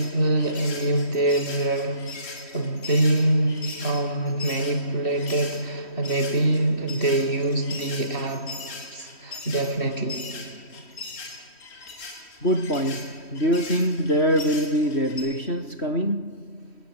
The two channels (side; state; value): right; late; 3.1 ms